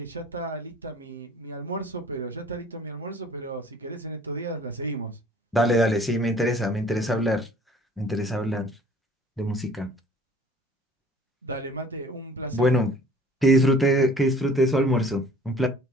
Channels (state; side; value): normal; both; correlation 0.51